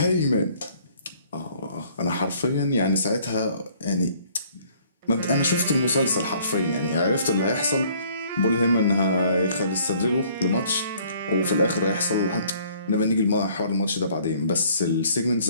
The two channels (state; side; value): inverted; both; correlation -0.59